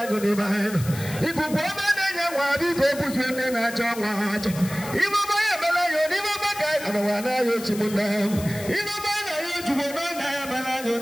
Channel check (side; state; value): left; noise; hiss, 13 dB below the sound